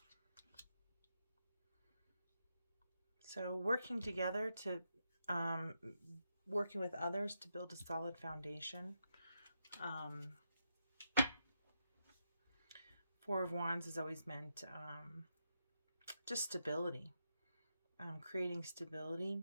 So working together to, working with others to build a solid foundation. Four of Wands has always meant just stability. Creating stability.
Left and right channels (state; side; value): inverted; both; correlation -0.83